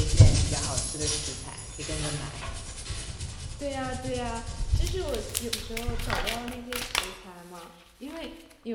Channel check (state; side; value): identical; both; correlation 1.00